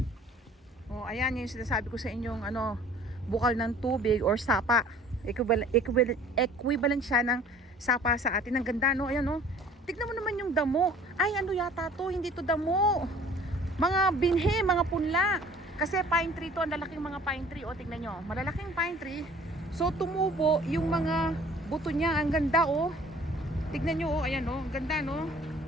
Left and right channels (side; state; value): both; normal; correlation 0.51